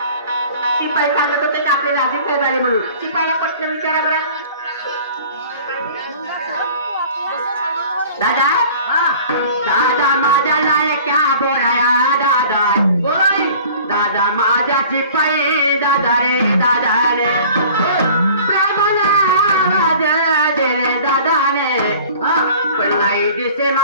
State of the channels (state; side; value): inverted; both; correlation -0.46